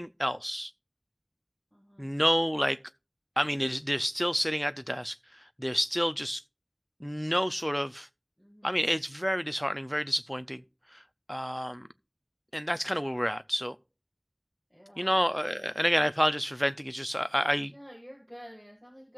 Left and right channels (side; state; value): both; identical; correlation 1.00